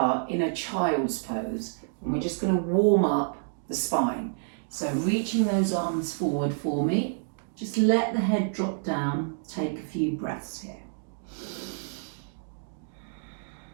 in a child's pose and we're just going to warm up the spine. So reaching those arms forward for me, just let the head drop down, take a few breaths here.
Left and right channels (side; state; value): left; silent; digital silence